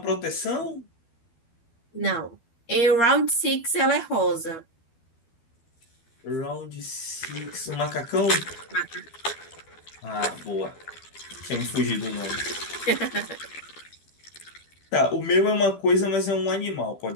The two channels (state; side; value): late; right; 12 ms